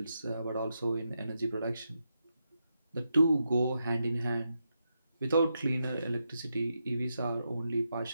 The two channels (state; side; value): inverted; both; correlation -0.85